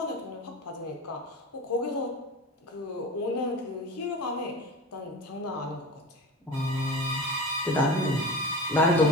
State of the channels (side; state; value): both; normal; correlation 0.31